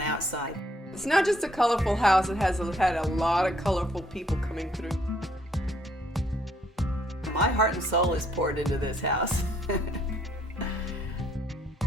outside. It's not just a colorful house, it has had a lot of colorful people coming through. My heart and soul is poured into this house.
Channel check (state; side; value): normal; both; correlation 0.67